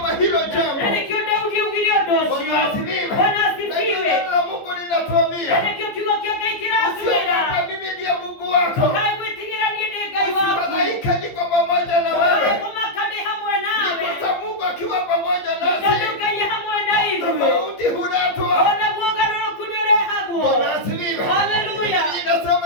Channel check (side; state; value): right; late; 15 ms